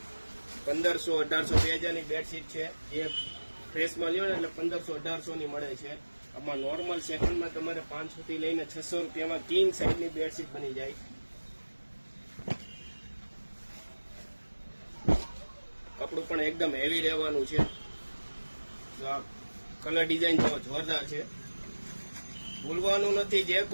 1500-1800 2000 બેડશીટ છે. જે ફ્રેશમાં લ્યો ને એટલે 1500-1800 મળે છે. આમાં નોર્મલ સેકન્ડમાં તમારે 500 થી લઈને 600 રૂપિયામાં કિંગ સાઇઝની બેડશીટ બની જાય. કપડું પણ એકદમ હેવી રહેવાનું છે. કલર ડિઝાઇન તો જોરદાર છે. ભૂલવાનું નથી. જે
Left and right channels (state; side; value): inverted; both; correlation -1.00